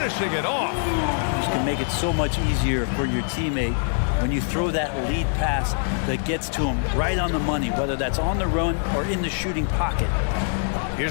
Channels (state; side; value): silent; right; 63 dB below the other